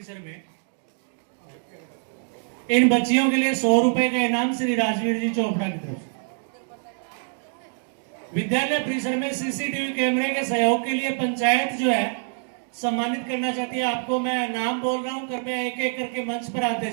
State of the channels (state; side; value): silent; left; 62 dB below the other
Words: में इन बच्चियों के लिए 100 रुपए का इनाम श्री राजवीर जी चोपड़ा की तरफ से। विद्यालय परिसर में सीसीटीवी कैमरे के सहयोग के लिए पंचायत जो है सम्मानित करना चाहती है। आपको मैं नाम बोल रहा हूं, कृपया एक एक करके मंच पर आते